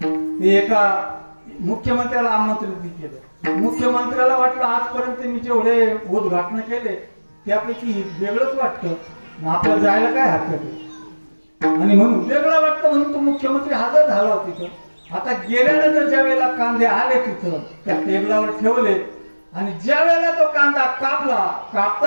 ते एका मुख्यमंत्र्याला आमंत्रित केलं. मुख्यमंत्र्याला वाटलं आजपर्यंत मी जेवढे उद्घाटन केले त्यापैकी वेगळंच वाटतं, आपल्याला जायला काय हरकत आहे. आणि म्हणून वेगळं वाटतं म्हणून तो मुख्यमंत्री हजर झाला होता तिथं. आता गेल्यानंतर ज्या वेळेला कांदे आले तिथं त्या टेबलावर ठेवले आणि ज्या वेळेला तो कांदा कापला,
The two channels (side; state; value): both; inverted; correlation -1.00